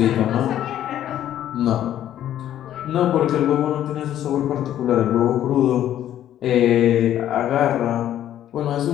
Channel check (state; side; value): quieter; right; 11.6 dB